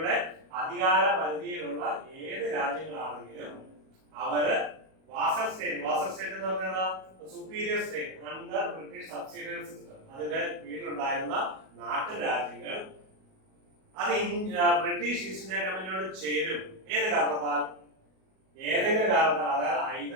അധികാര പരിധിയിലുള്ള ഏത് രാജ്യങ്ങളാണെങ്കിലും അവര് വാസൽ സ്റ്റേറ്റ് എന്ന് പറഞ്ഞാൽ superior state under British subsidiary system, അതിന്റെ കീഴിലുണ്ടായിരുന്ന നാട്ടുരാജ്യങ്ങൾ അത് ബ്രിട്ടീഷ് ഈസ്റ്റ് ഇന്ത്യ കമ്പനിയോട് ചേരും. ഏത് കാരണത്താൽ? ഏതെങ്കിലും കാരണത്താൽ. അതായത്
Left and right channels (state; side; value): late; left; 37 ms